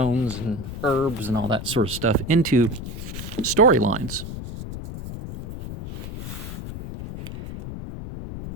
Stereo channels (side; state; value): left; noise; rumble, 9 dB below the sound